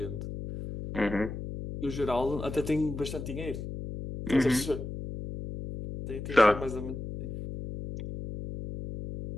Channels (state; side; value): noise; left; hum, 7 dB below the sound